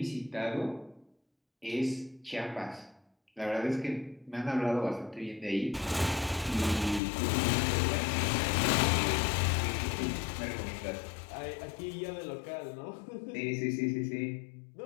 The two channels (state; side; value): drops out; right; at 7.0 s